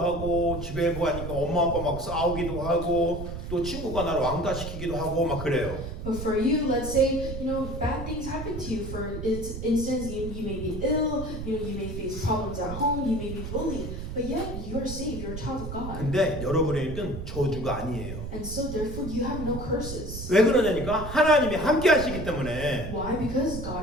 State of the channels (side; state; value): right; noise; rumble, 7 dB below the sound